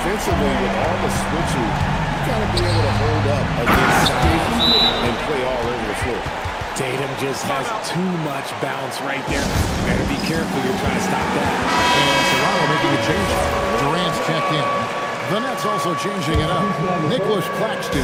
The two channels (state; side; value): identical; both; correlation 1.00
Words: with all the switching, you got to be able to hold up against size and play all over the floor. Tatum just has too much bounce right there. Better be careful. You're trying to stop that. And Toronto making a change. Durant's checked in. The Nets also changing it up. Nicholas